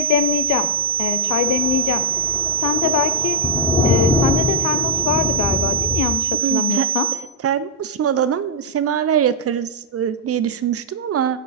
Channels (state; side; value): normal; both; correlation -0.07